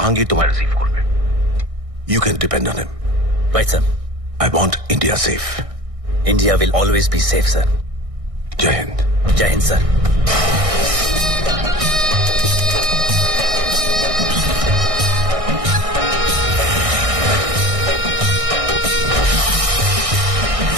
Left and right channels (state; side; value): late; left; 1.6 ms